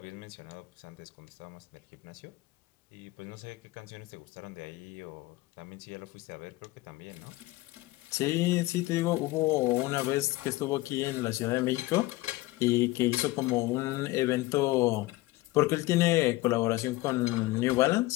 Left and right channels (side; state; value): right; quieter; 19.6 dB